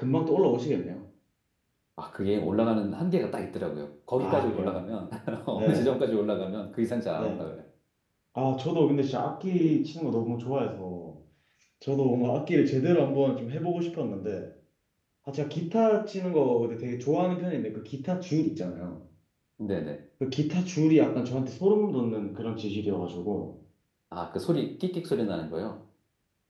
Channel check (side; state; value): both; identical; correlation 1.00